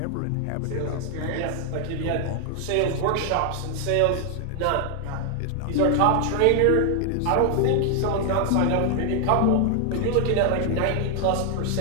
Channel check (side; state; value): both; different; correlation 0.00